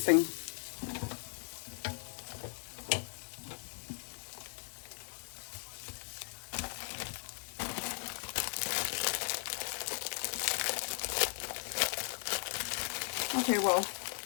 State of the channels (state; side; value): silent; right; 53 dB below the other